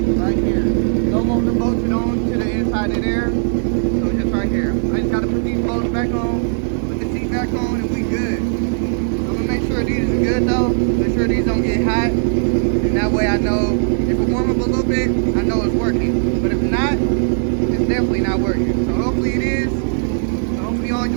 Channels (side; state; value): left; silent; 64 dB below the other